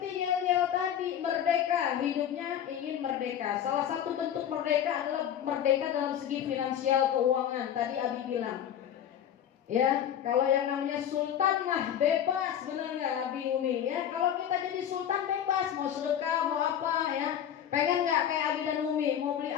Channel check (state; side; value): quieter; right; 9.8 dB